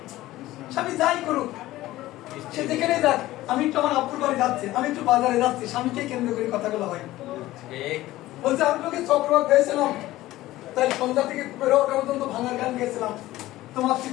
স্বামী যাই করুক, সে যেখানে যাক, আমি একটু আমার আপুর বাড়ি যাচ্ছি, আমি একটু বাজারে যাচ্ছি, স্বামীকে কেন্দ্র করে কথাগুলো হয়। বলছে আমি তোকে চক্রবাক ভেবেছিলাম, তাই সন্ধ্যা থেকে বেরো ওটা পর্যন্ত ভাঙার গান গেছিলাম। তোমার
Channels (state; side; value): quieter; right; 16.4 dB